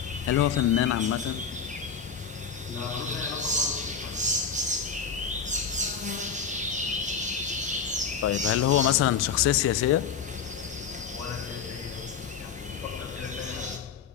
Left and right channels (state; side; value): quieter; right; 6.6 dB